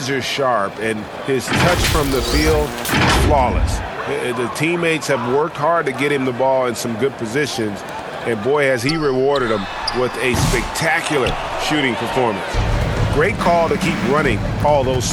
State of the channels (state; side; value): identical; both; correlation 1.00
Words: sharp, and his touch from the field, flawless. The teammates have worked hard to get him the ball in some good positions, and boy, has he rewarded them with a spectacular shooting performance. Great call to keep running all those